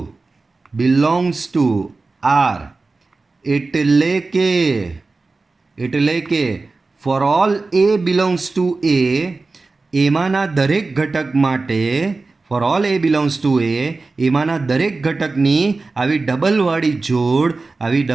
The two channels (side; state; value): left; quieter; 3.7 dB